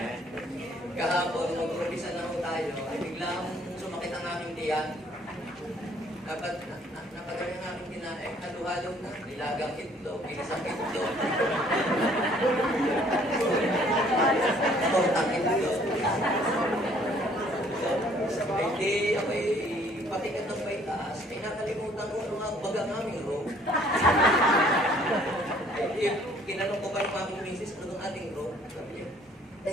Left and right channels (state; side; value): normal; both; correlation 0.60